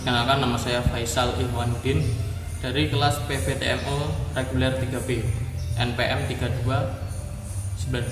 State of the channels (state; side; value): identical; both; correlation 1.00